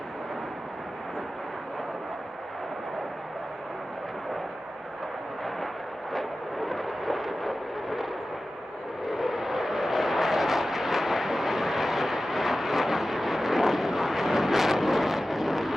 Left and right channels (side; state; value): both; normal; correlation 0.94